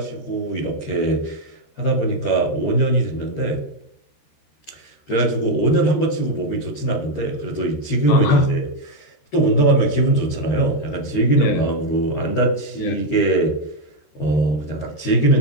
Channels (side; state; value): right; late; 13 ms